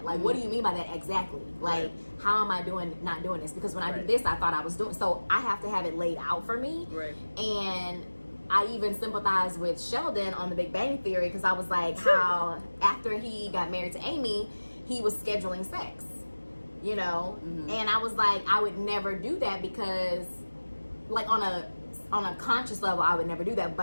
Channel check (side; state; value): both; inverted; correlation -1.00